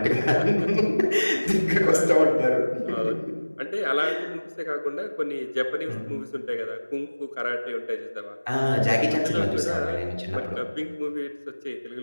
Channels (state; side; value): inverted; both; correlation -1.00